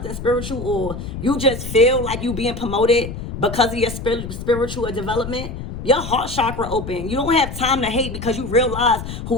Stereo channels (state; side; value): noise; left; rumble, 8 dB below the sound